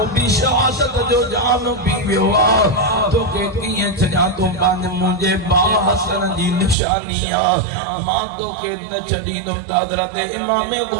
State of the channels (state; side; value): drops out; left; at 6.8 s